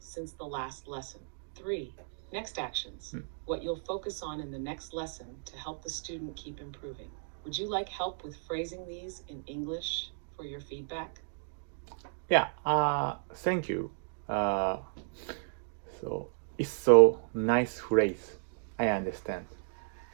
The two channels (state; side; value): silent; left; digital silence